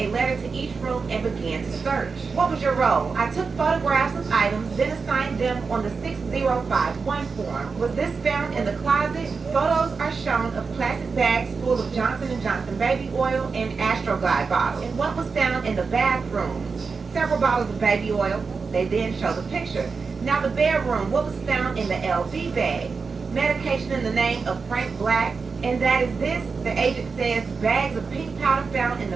letter to each room and began to search. What was your role? I took photographs of items, then assigned them on the 6051 form. Was this found in the closet? Photos are shown of plastic bags full of Johnson & Johnson baby oil and Astroglide bottles. And what was found in the bathroom? Several bottles of baby oil. They then show the picture. Now the bedroom, what was found in the LV bag? Medication in the name of Frank Black. And that is this, the agent says, bags of pink powder found in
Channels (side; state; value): left; quieter; 4.9 dB